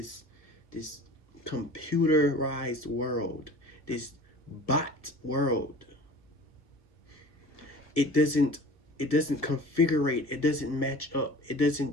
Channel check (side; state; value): right; late; 1.3 ms